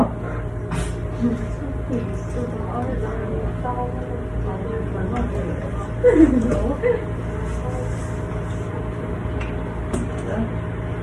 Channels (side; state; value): both; identical; correlation 1.00